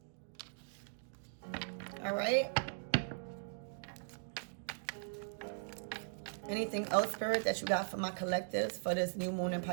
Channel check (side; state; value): left; silent; digital silence